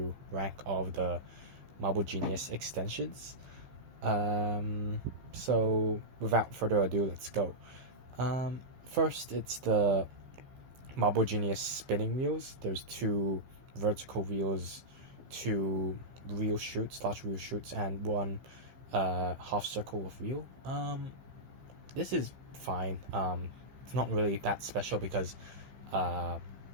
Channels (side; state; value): left; late; 15 ms